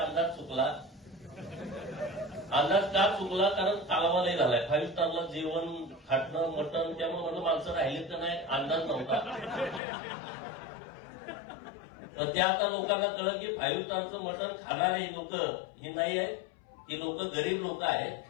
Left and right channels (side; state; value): right; drops out; at 9.8 s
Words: चुकला. अंदाज का चुकला? कारण कालवा लय झालाय. 5 स्टारला जेवण, खाटणं, मटण, त्यामुळे म्हणलं माणसं राहिलीत का नाही अंदाज नव्हता. तर त्या आता लोकांना कळलं की 5 स्टारचं मटण खाणारे लोक हे नाही आहेत, ही लोक गरीब लोक आहेत,